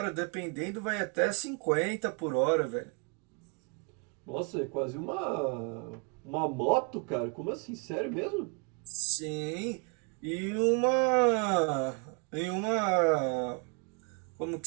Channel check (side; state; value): left; quieter; 35.2 dB